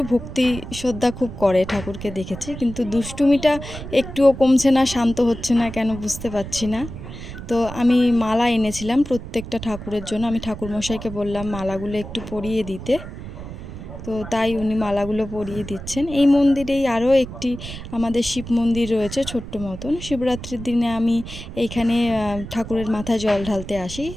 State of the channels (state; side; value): noise; right; rumble, 11 dB below the sound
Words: ভক্তি শ্রদ্ধা খুব করে, ঠাকুরকে দেখেছি। কিন্তু দুষ্টুমিটা একটুও কমছে না, শান্ত হচ্ছে না কেন বুঝতে পারছি না। তো আমি মালা এনেছিলাম প্রত্যেকটা ঠাকুরের জন্য। আমি ঠাকুরমশাইকে বললাম মালাগুলো একটু পরিয়ে দিতে। তো তাই উনি মালাগুলো পরিয়ে দিচ্ছেন। এই মন্দিরেই আরও একটি আমাদের শিব মন্দির রয়েছে, ছোট্ট মতন। শিবরাত্রির দিনে আমি এইখানে ঠাকুরের মাথায় জল ঢালতে আসি।